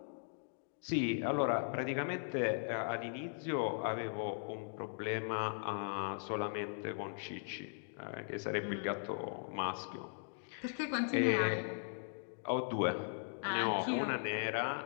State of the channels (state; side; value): silent; right; digital silence